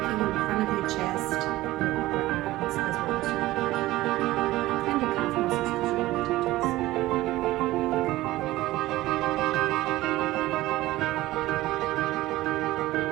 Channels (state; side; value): quieter; left; 17.2 dB